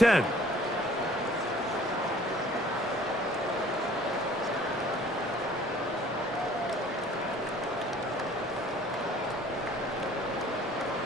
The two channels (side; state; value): both; normal; correlation 0.53